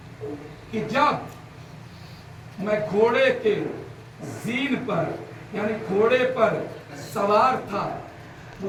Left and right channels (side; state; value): both; identical; correlation 1.00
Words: کہ جب میں گھوڑے کے زین پر یعنی گھوڑے پر سوار تھا